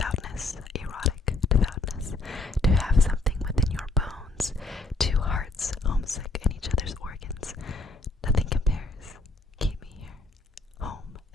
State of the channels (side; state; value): right; quieter; 3.1 dB